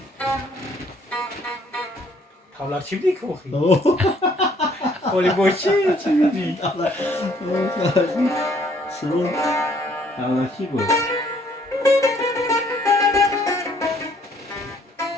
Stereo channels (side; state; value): both; normal; correlation 0.63